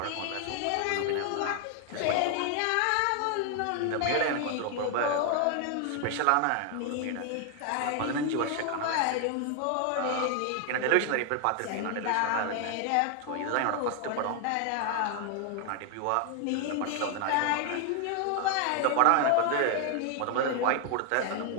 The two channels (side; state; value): both; different; correlation 0.00